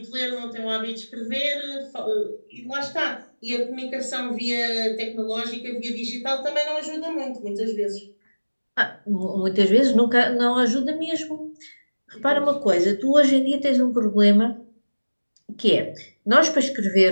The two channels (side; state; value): both; inverted; correlation -1.00